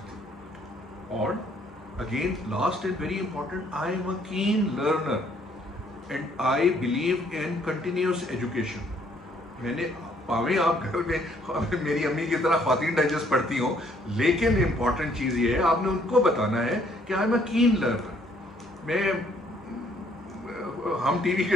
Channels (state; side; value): normal; both; correlation 0.65